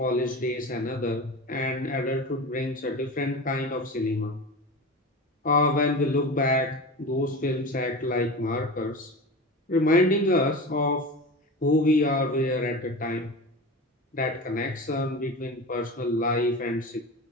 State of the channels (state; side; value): normal; both; correlation 0.29